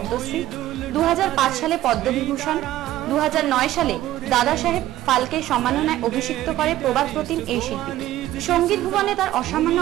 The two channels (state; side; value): quieter; left; 14.5 dB